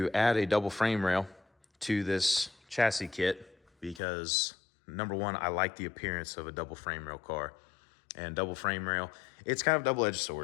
add a double frame rail to this chassis kit because, number one, I like the appearance of a double frame rail car. And double frame rail, it's kind of a double-edged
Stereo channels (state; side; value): drops out; right; at 4.0 s